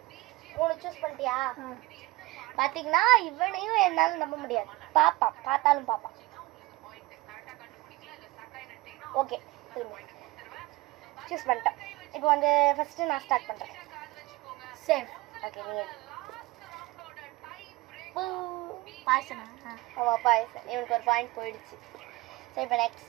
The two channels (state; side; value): quieter; left; 20.9 dB